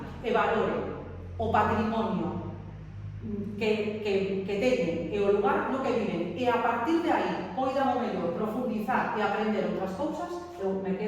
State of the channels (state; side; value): identical; both; correlation 1.00